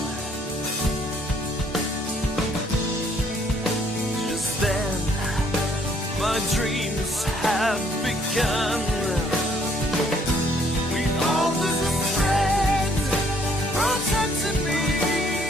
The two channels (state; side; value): normal; both; correlation 0.64